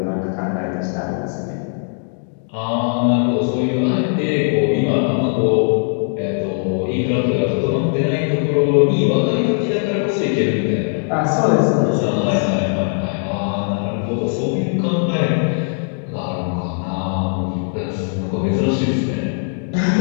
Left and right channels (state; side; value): silent; right; 66 dB below the other